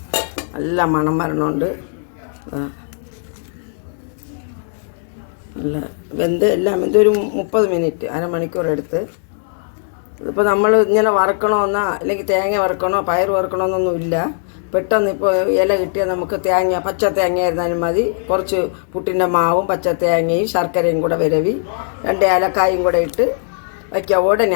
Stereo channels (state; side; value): silent; right; digital silence